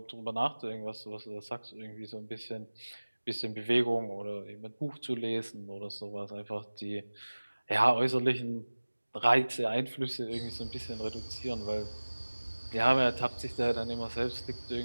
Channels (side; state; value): both; inverted; correlation -1.00